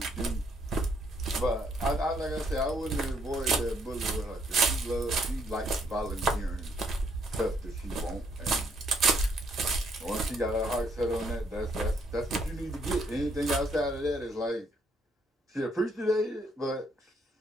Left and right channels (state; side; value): normal; both; correlation 0.70